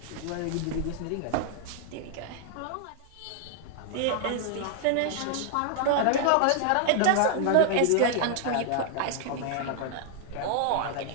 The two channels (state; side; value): different; both; correlation 0.00